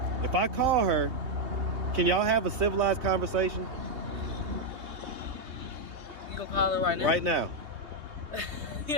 if I call her, can y'all have a civilized conversation? You gonna call her right now? Right now.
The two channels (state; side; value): late; left; 3.2 ms